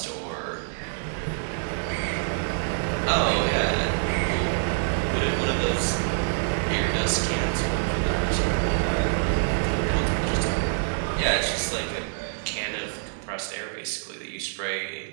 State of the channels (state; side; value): silent; left; digital silence